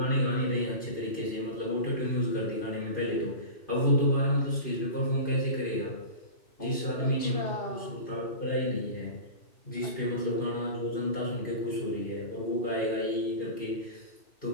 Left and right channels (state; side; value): late; right; 2.7 ms